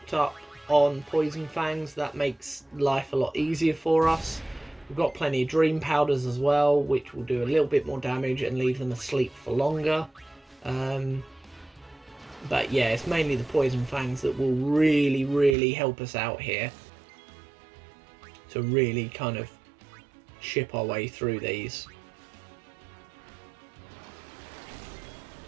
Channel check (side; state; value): left; drops out; at 15.6 s